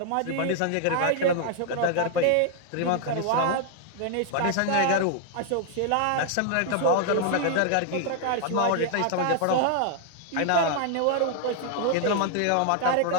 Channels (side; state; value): both; different; correlation 0.00